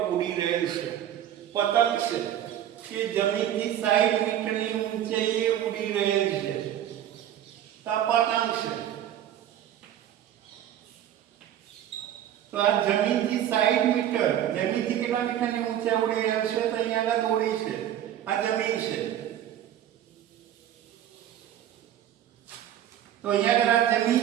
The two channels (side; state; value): left; quieter; 11.1 dB